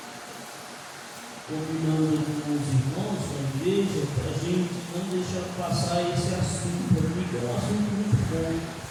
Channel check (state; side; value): identical; both; correlation 1.00